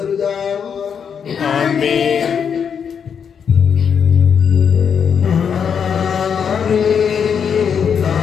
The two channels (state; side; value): quieter; right; 7.2 dB